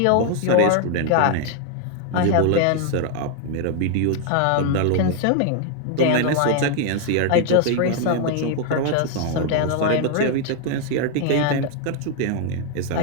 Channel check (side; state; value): both; different; correlation 0.00